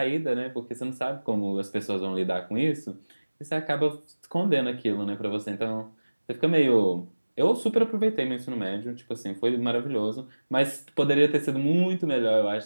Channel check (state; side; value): inverted; both; correlation -1.00